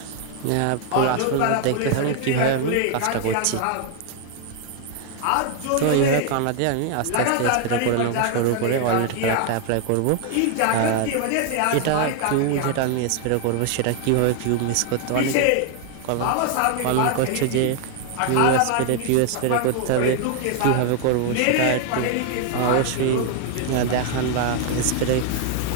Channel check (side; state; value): both; different; correlation 0.00